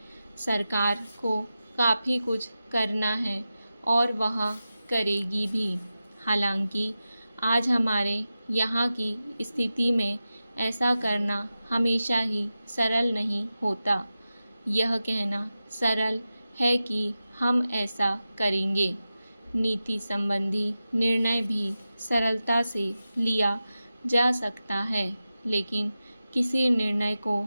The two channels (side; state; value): both; inverted; correlation -0.93